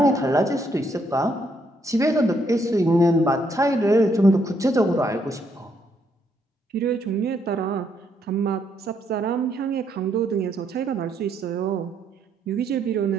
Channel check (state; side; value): normal; both; correlation 0.73